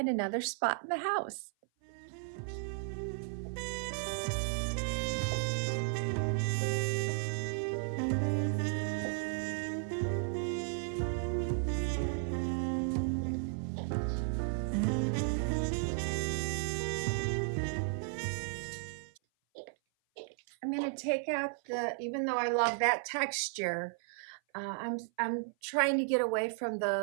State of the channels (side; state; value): left; silent; 55 dB below the other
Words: another spot in the house. I'm going to take out even though I love that texture, I'm trying to get away from